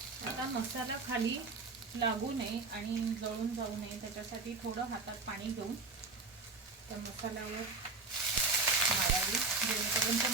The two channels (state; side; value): quieter; left; 3.8 dB